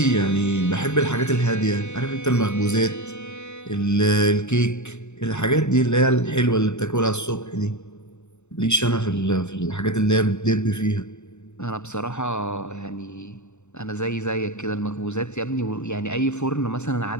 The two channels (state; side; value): late; right; 0.82 ms